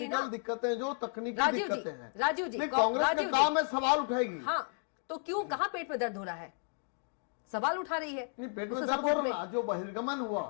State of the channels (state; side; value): silent; right; 56 dB below the other